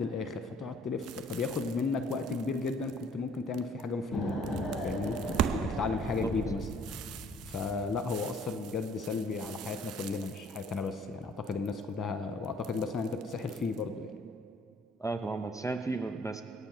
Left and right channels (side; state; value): both; normal; correlation 0.58